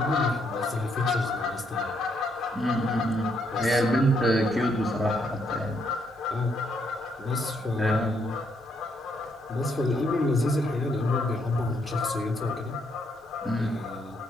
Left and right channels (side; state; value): both; normal; correlation 0.74